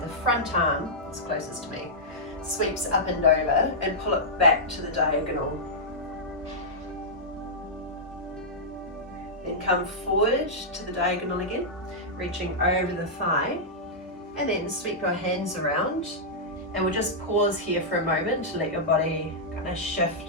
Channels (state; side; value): normal; both; correlation -0.10